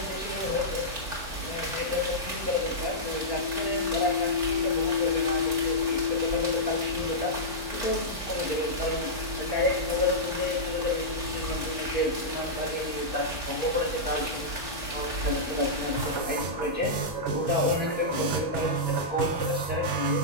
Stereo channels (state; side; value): late; left; 3.5 ms